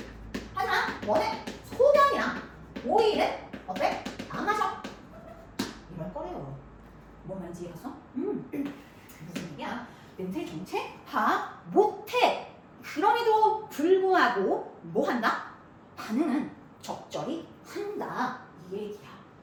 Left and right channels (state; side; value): identical; both; correlation 1.00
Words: 하지만 뭐는 소변이랑 오일은 어때? 안 마셔? 이럴 거래요. 뭔 말인지 이해갔어? 무슨 얘기야? 냄새 정체 파악 못해. 그럼에도 불구하고 뭐 한다? 반응은 적절히 한다. 이 얘기야.